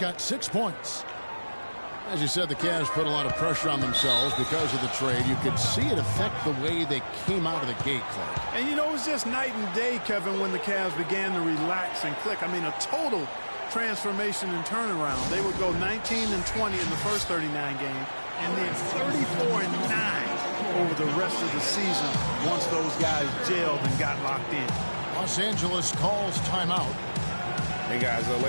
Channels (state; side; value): inverted; both; correlation -1.00